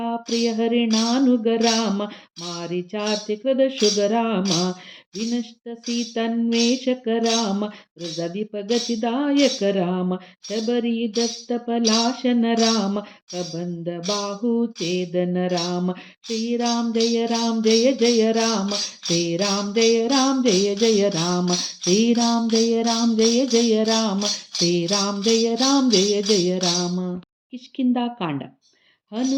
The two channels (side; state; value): both; identical; correlation 1.00